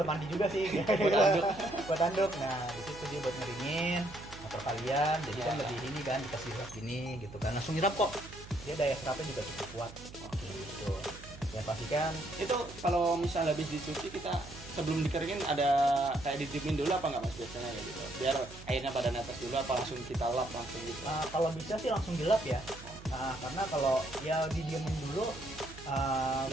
mandi juga sih. Buat anduk. Buat anduk. Nah, di situ dia buat ngeringin motor kalian. Jadi kan Ya. lebih ini kan dikasih serap gini gitu kan. Langsung nyerap kok. Dia daya serapnya juga cukup kuat. Oke, gitu. Ya pastikan Itu kalau misal habis dicuci kita sebelum dikeringin ada kayak didiemin dulu apa nggak mas biasanya kayak gitu? Biar airnya pada netes dulu apa langsung kita lap langsung gitu? kalau bisa sih langsung dilap ya. Karena kalau ya didiemin dulu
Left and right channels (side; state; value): right; noise; hum, 16 dB below the sound